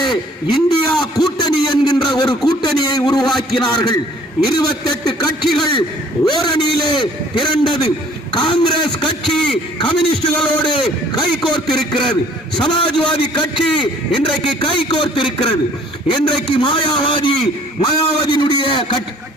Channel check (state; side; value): normal; both; correlation 0.55